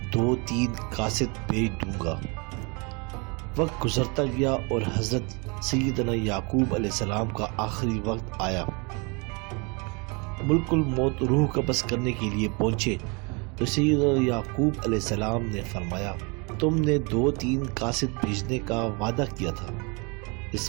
2-3 قاصد بھیج دوں گا۔ وقت گزرتا گیا اور حضرت سیدنا یعقوب علیہ السلام کا آخری وقت آیا۔ ملک الموت روح قبض کرنے کے لیے پہنچے تو سیدنا یعقوب علیہ السلام نے فرمایا، تم نے 2-3 قاصد بھیجنے کا وعدہ کیا تھا۔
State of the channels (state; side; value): quieter; left; 31.2 dB